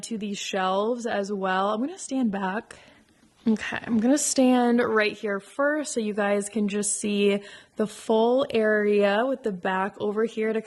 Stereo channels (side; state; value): both; identical; correlation 1.00